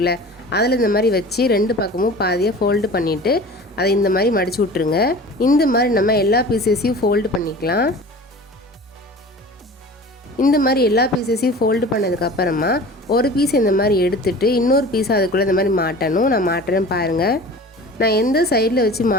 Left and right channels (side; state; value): both; normal; correlation 0.40